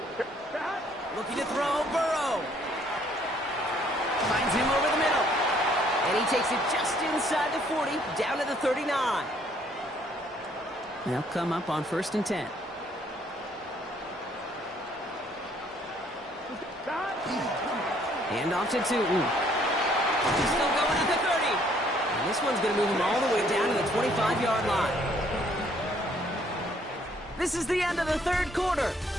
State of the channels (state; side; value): normal; both; correlation 0.64